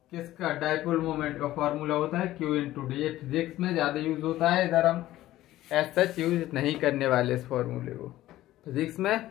किसका, डाइपोल मोमेंट का फॉर्मूला होता है क्यू इंटू डी। ये फिजिक्स में ज्यादा यूज होता है, इधर हम एज सच यूज नहीं करने वाले इस फॉर्मूले को। फिजिक्स में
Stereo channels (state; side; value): quieter; right; 15.1 dB